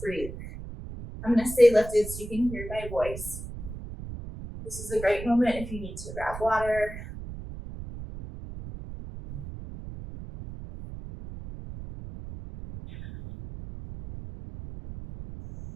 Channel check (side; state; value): right; noise; rumble, 11 dB below the sound